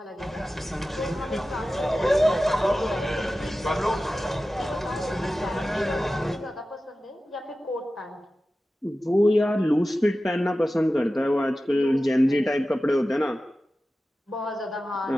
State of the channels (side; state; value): both; normal; correlation 0.95